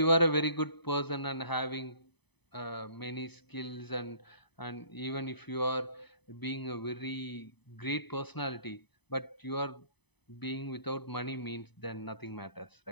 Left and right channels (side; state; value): right; late; 0.99 ms